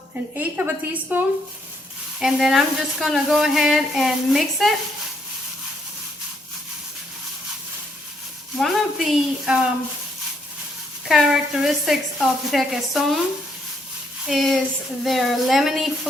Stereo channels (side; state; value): both; normal; correlation 0.72